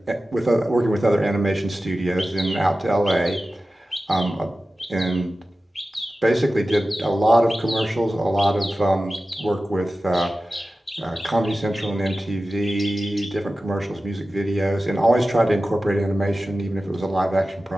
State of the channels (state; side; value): normal; both; correlation 0.95